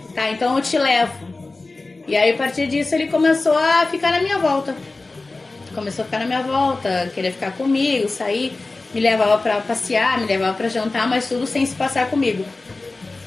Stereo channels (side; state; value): right; quieter; 3.4 dB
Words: Tá, então eu te levo. E aí a partir disso ele começou a ficar na minha volta. Começou a ficar na minha volta, queria ficar comigo, sair. Me levava pra passear, me levava pra jantar, mas tudo sem se passar comigo.